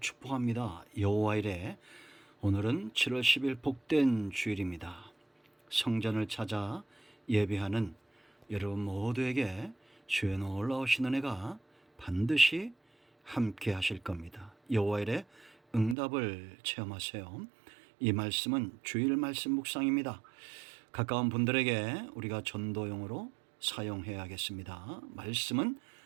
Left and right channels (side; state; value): left; drops out; at 16.0 s